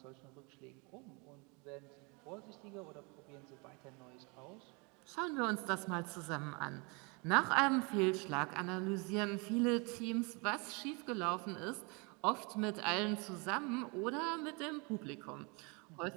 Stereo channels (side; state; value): left; quieter; 30.5 dB